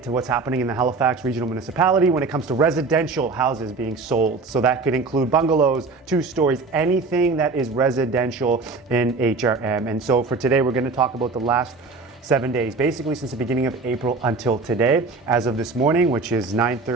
to what's happening in the Halifax Regional Municipality when it comes to residential houses being sold. So that could include bungalows, 2 stories, anything that is residential in HRM. And so for today, we're going to talk about the last 7 days, basically since the beginning of April until today, as of this morning, which is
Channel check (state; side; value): quieter; left; 4.0 dB